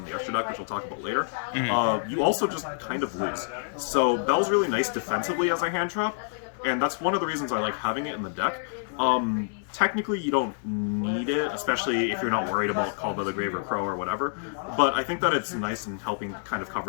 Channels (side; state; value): right; silent; digital silence